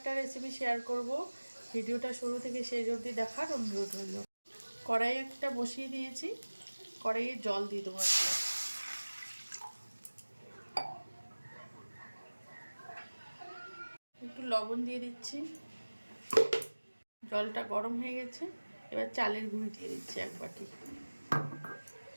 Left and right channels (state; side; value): inverted; both; correlation -1.00